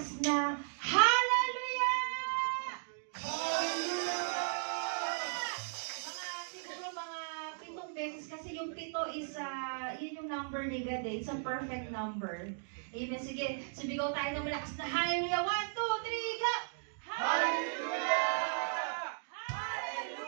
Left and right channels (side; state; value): left; silent; digital silence